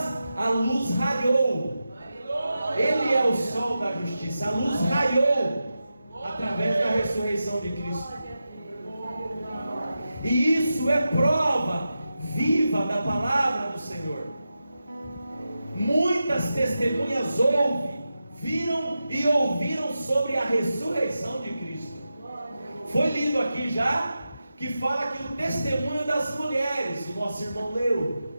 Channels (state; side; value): inverted; both; correlation -0.91